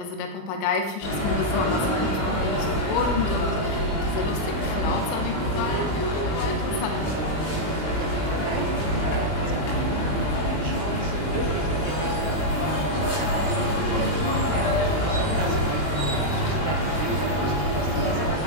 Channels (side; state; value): right; late; 20 ms